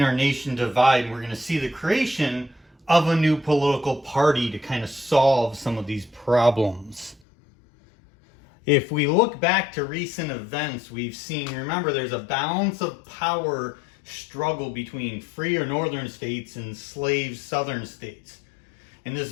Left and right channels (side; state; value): right; drops out; at 7.2 s